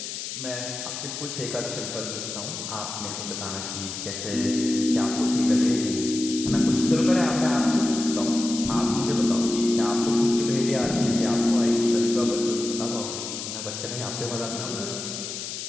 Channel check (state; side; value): noise; left; hiss, 7 dB below the sound